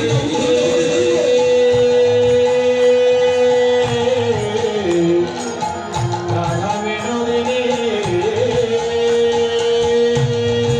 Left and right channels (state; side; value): identical; both; correlation 1.00